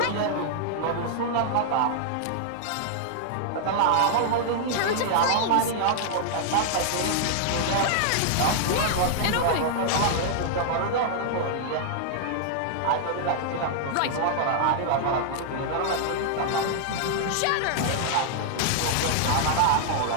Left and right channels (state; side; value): different; both; correlation -0.01